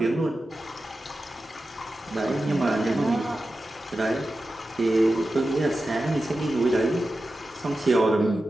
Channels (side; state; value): both; normal; correlation 0.92